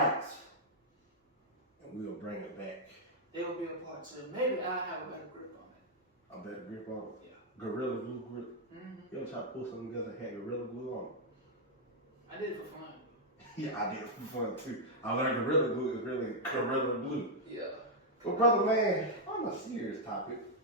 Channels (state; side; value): normal; both; correlation -0.03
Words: And we'll bring it back. There will be a part 2. Maybe I'll have a better grip on it. A better grip on it? Yeah. Gorilla glue grip? Mm-hmm. You ever try to pull something together and had Gorilla glue on it? I did it for fun. Yeah, I did it for fun too. I learned Gorilla glue is really Gorilla glue. Yeah. Well, brother man, on a serious topic.